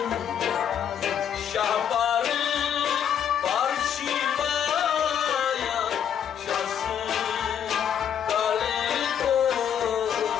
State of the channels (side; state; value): right; quieter; 8.8 dB